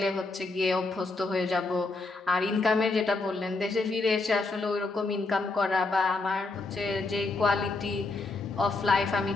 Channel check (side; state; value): right; quieter; 3.4 dB